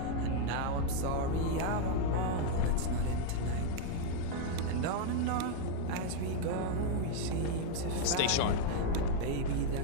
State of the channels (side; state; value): both; different; correlation 0.00